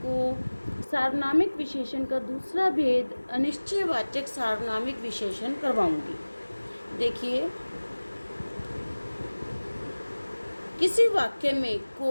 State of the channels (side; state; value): both; inverted; correlation -1.00